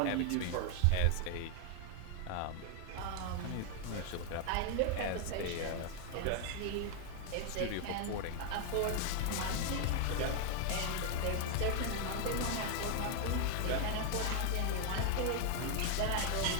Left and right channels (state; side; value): different; both; correlation 0.00